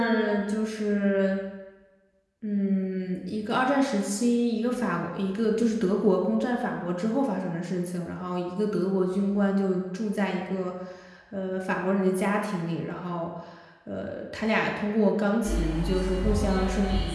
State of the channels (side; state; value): both; identical; correlation 1.00